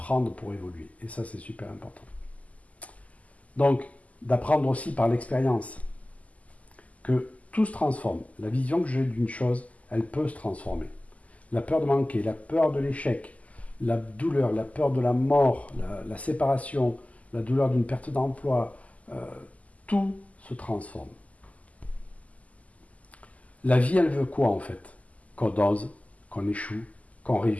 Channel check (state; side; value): late; right; 0.072 ms